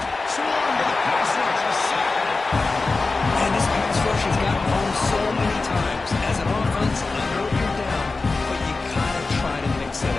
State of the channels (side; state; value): right; quieter; 3.7 dB